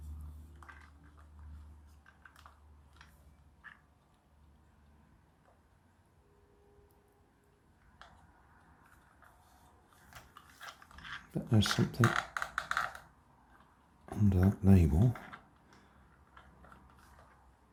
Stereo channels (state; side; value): identical; both; correlation 1.00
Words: But there's something under that label.